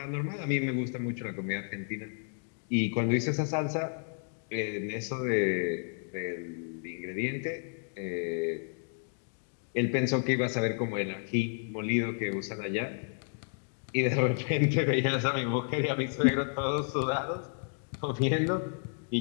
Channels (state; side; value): silent; right; 57 dB below the other